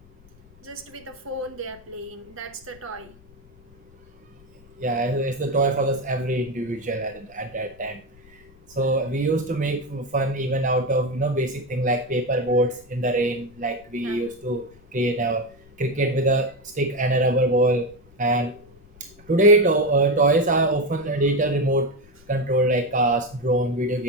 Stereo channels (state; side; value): noise; left; rumble, 26 dB below the sound